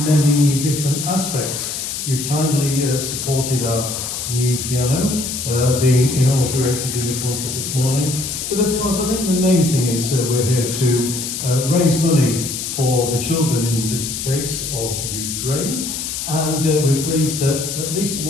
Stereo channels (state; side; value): noise; left; hiss, 5 dB below the sound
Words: different aspects. You've kindly supported our new piano being inaugurated in the concert this morning. But of course, I think the main thing is we're here to raise money for the children, in this case, of Ukraine. And we're pleased that at least